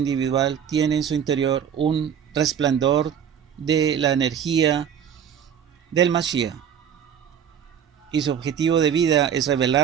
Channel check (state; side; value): quieter; left; 8.4 dB